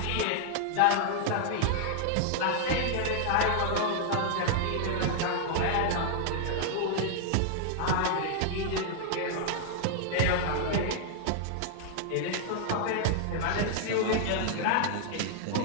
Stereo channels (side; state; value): both; different; correlation 0.00